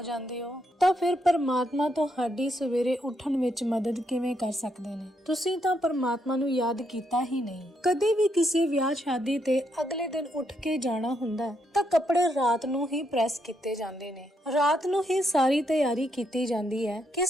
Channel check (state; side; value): normal; both; correlation 0.77